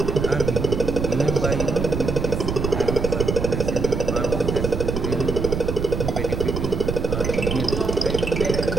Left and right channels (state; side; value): noise; right; rumble, 2 dB below the sound